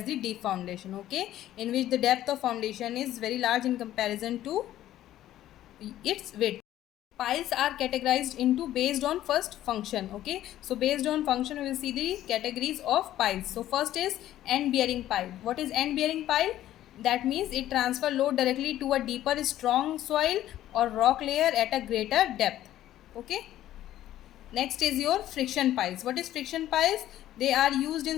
the deep foundation. Okay, in which the depth of foundation is very large in comparison to its width. Piles are categorized into based on first function. Okay, so based on function we will see the categories of piles. So first is end bearing pile. What is end bearing pile? That means it transfer load directly to a deeper strong soil or rock layer at a greater depth. Okay, next is your friction piles. What is friction piles? They are used in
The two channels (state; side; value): quieter; right; 13.1 dB